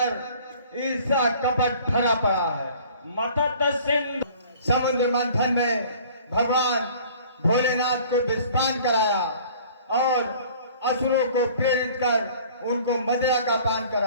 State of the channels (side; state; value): both; inverted; correlation -0.50